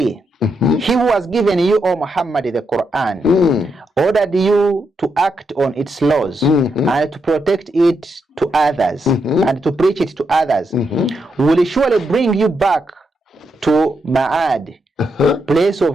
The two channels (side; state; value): both; normal; correlation 0.82